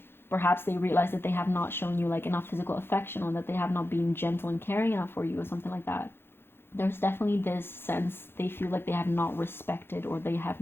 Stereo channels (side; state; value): right; late; 0.11 ms